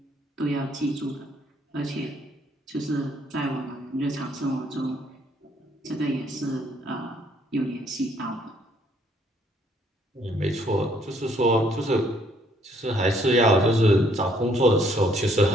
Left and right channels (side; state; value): both; normal; correlation 0.66